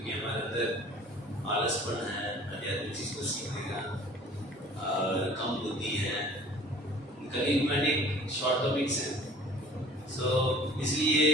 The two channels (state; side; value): normal; both; correlation 0.48